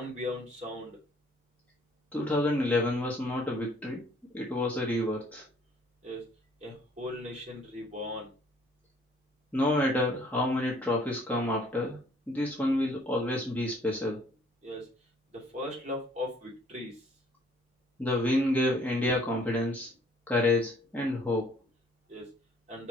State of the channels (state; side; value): normal; both; correlation 0.60